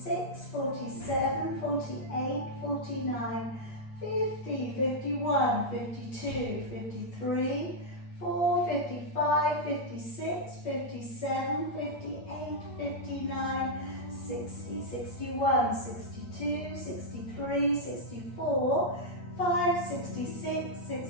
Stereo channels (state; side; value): late; right; 8.5 ms